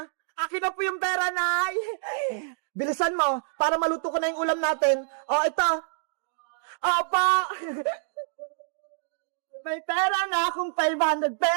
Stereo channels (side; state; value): left; silent; digital silence